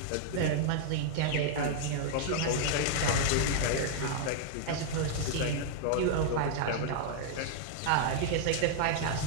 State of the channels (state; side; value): different; both; correlation -0.01